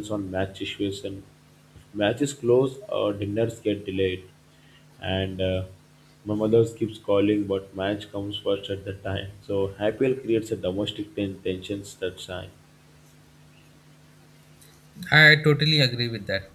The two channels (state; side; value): identical; both; correlation 1.00